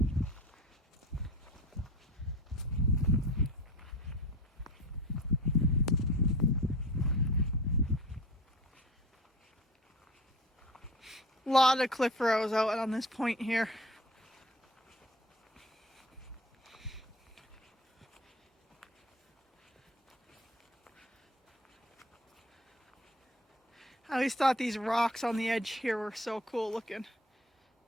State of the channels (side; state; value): both; normal; correlation 0.39